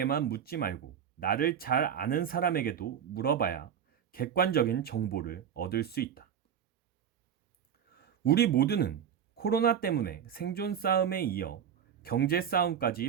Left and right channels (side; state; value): left; quieter; 8.5 dB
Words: 묻지 말고 나를 잘 아는 사람에게도 물어봐야 객관적인 정보를 얻을 수 있다. 우리 모두는 코로나 때문에 생존 싸움에 이어 경제